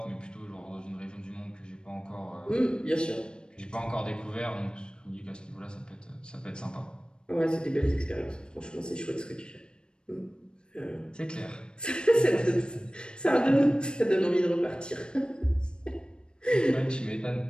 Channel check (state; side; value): late; right; 0.052 ms